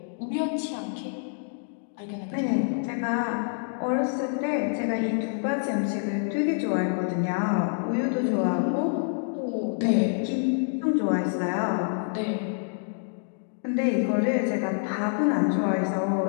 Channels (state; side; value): silent; right; digital silence